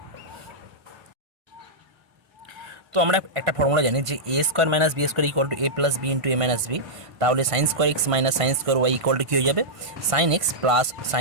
তো আমরা একটা ফর্মুলা জানি যে A square minus B square equal to A plus B into A minus B. তাহলে sine square x minus sine square Y equal to কী হয়ে যাবে, sine x plus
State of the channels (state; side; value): late; left; 1.5 ms